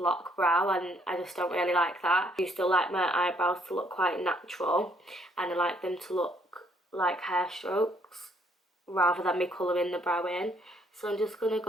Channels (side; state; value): both; normal; correlation 0.67